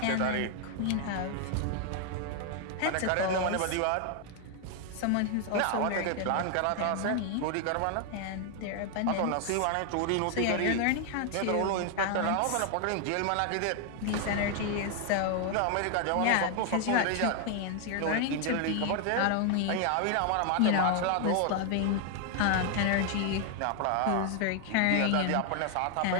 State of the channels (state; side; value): different; both; correlation 0.00